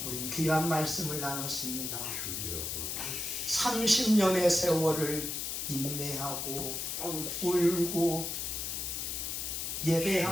우린 귀한 말씀을 나눴습니다. 30년의 세월을 인내하고 울고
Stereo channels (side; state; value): left; noise; hiss, 3 dB below the sound